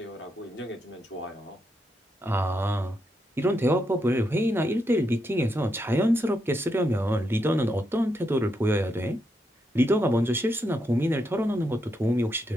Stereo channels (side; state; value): both; normal; correlation 0.81